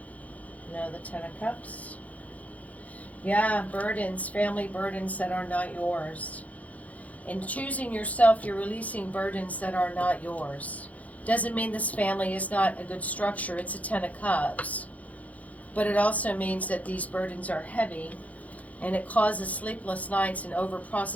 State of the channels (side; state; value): right; late; 0.071 ms